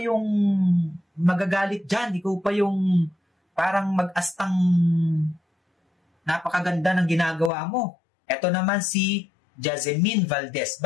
magagalit dyan. Ikaw pa yung parang mag-astang napakaganda ng ginagawa mo. Ito naman si Jasmine Valdez.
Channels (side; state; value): right; drops out; at 7.5 s